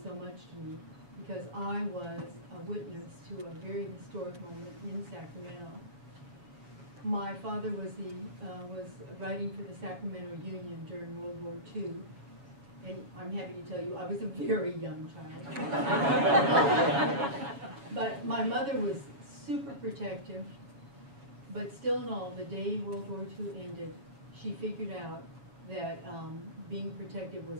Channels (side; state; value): left; late; 7.2 ms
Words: so much to me. because I was a witness to a very historic moment in Sacramento. My father was writing for the Sacramento Union during World War II, and I'm happy to tell you I was a very young child. But my mother was super protective, but still in all, the day World War II ended, she figured out that being protective